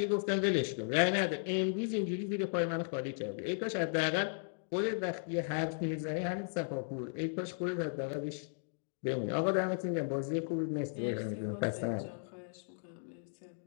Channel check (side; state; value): right; silent; digital silence